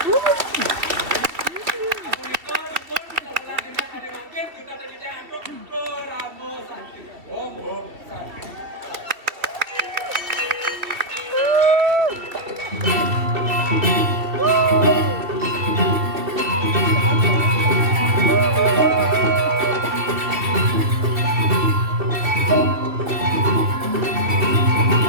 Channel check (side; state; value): left; late; 2.9 ms